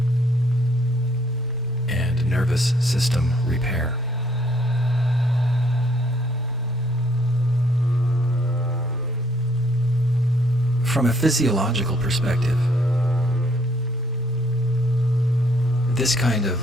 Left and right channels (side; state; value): both; normal; correlation 0.66